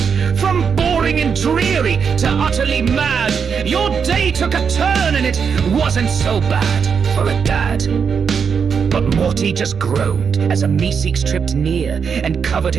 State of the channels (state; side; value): quieter; left; 6.4 dB